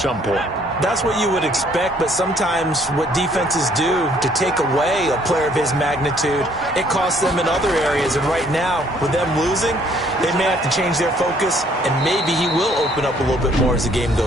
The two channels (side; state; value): both; normal; correlation 0.63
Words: point. That's what you would expect, but sometimes what defenses do to take away a player of his magnitude, it costs them in other areas. And right now, with them losing, they may have to change their focus, and maybe he will open up a little bit more as the game